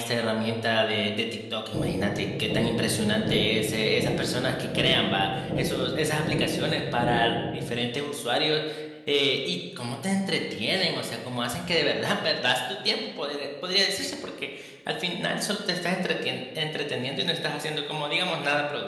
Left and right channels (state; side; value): identical; both; correlation 1.00